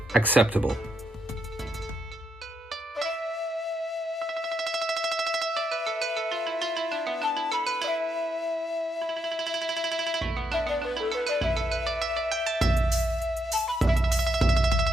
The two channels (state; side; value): normal; both; correlation 0.80